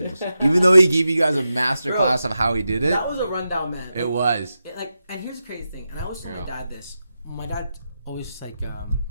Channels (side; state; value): both; inverted; correlation -0.89